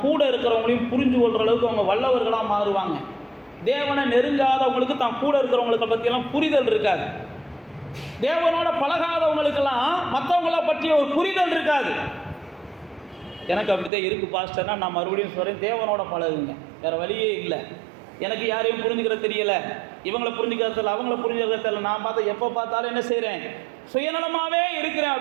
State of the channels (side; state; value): left; drops out; at 13.9 s